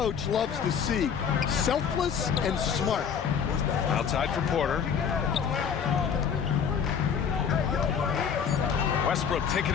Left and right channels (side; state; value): right; quieter; 7.1 dB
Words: loves to see. Selfless and smart. Outside for Porter. Westbrook taking